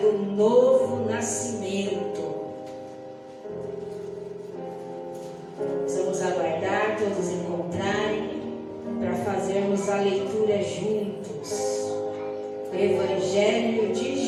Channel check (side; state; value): both; identical; correlation 1.00